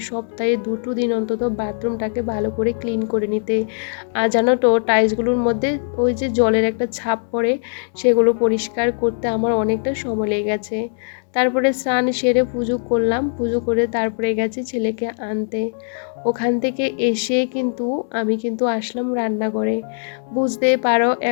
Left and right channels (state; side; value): silent; right; digital silence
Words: 2টো দিন অন্তত বাথরুমটাকে ভালো করে ক্লিন করে নিতে। আর জানো তো, টাইলসগুলোর মধ্যে ওই যে জলের একটা ছাপ পড়ে, সেগুলো পরিষ্কার করতে আমার অনেকটা সময় লেগে গেছে। তারপরে স্নান সেরে পুজো করলাম, পুজো করে তারপরে গেছি ছেলেকে আনতে। ওখান থেকে এসে আমি আসলাম রান্নাঘরে। বুঝতেই পারো,